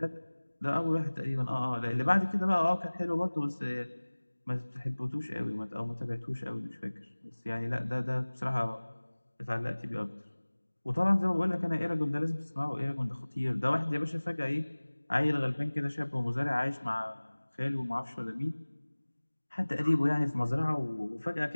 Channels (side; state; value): both; inverted; correlation -1.00